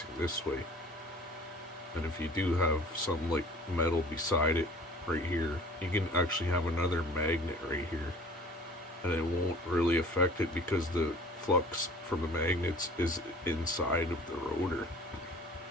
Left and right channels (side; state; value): both; normal; correlation 0.47